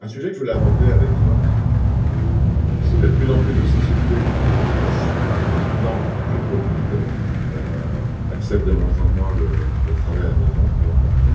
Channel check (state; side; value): identical; both; correlation 1.00